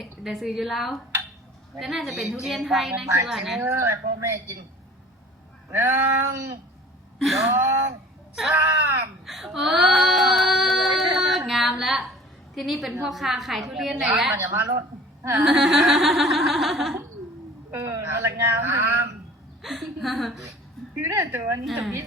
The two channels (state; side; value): normal; both; correlation 0.46